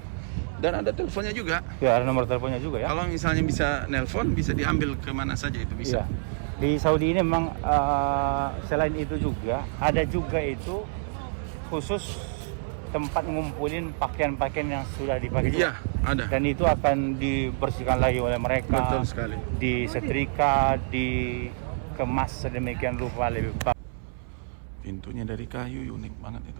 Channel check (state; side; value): silent; left; 60 dB below the other